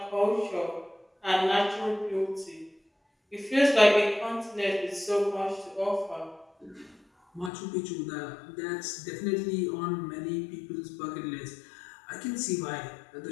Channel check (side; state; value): right; drops out; at 7.5 s